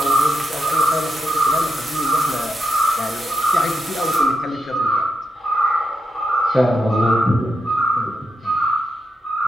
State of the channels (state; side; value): normal; both; correlation 0.85